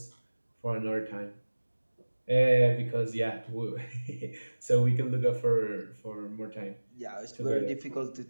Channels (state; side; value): inverted; both; correlation -1.00